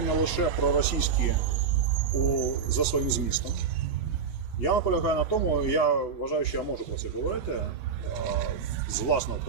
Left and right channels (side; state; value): left; quieter; 5.9 dB